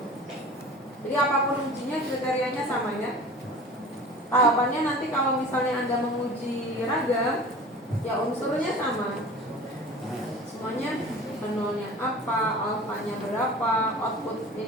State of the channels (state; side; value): normal; both; correlation 0.40